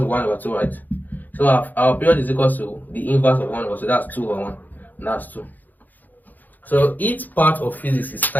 1/2, right? So our period is equal to the inverse of 1/2. So that's 2 over 1. And that's 2. So each part of physics is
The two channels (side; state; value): right; late; 0.084 ms